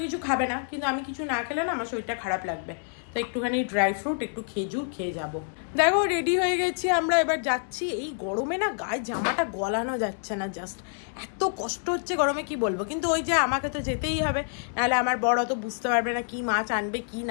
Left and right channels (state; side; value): silent; right; 60 dB below the other